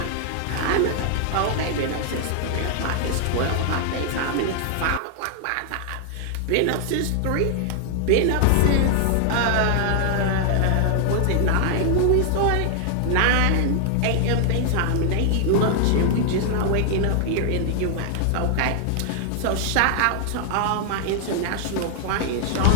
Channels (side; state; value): both; different; correlation 0.00